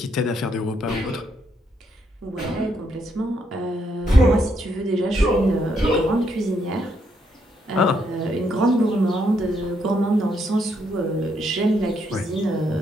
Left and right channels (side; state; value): both; normal; correlation 0.76